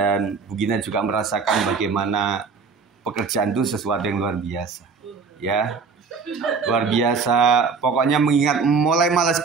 Bu Gina juga merasakan bagaimana pekerjaan itu sesuatu yang luar biasa. Ya, luar biasa. Pokoknya mengingat mulai malas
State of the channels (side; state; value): left; quieter; 5.1 dB